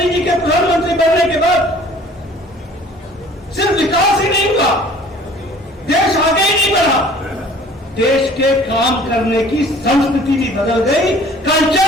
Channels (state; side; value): normal; both; correlation 0.51